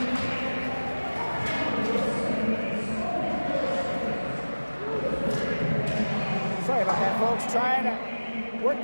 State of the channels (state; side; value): inverted; both; correlation -1.00